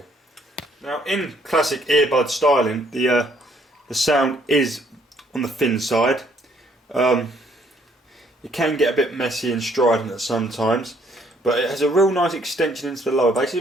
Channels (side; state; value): both; normal; correlation 0.65